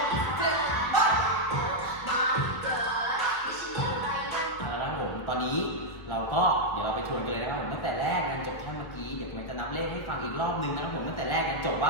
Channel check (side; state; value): right; late; 1.6 ms